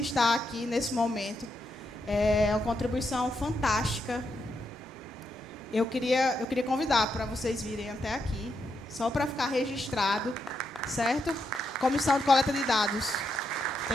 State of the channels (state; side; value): normal; both; correlation 0.82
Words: aqui nesse momento. É uma contribuição fantástica. Eu queria convidar para vocês virem até aqui, só para ficar registrado, certo? Comissão de coleta de dados.